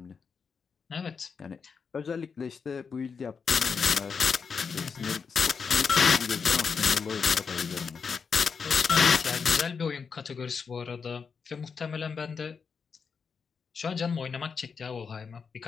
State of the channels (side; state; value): right; quieter; 5.8 dB